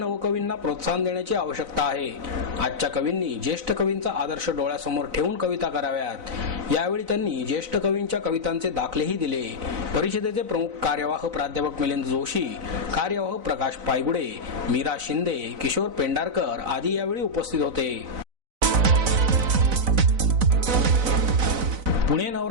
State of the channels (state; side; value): late; left; 4.0 ms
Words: प्रोत्साहन देण्याची आवश्यकता आहे. आजच्या कवींनी ज्येष्ठ कवींचा आदर्श डोळ्यासमोर ठेवून कविता कराव्यात. यावेळी त्यांनी ज्येष्ठ कवींच्या कवितांचे दाखलेही दिले. परिषदेचे प्रमुख कार्यवाह प्राध्यापक मिलिंद जोशी, कार्यवाह प्रकाश पायगुडे, मीरा शिंदे, किशोर पेंढारकर आदी यावेळी उपस्थित होते. पुणे